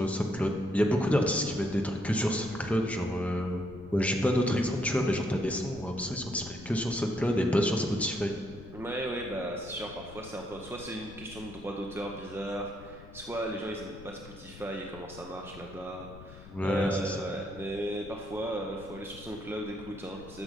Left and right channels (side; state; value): left; noise; rumble, 16 dB below the sound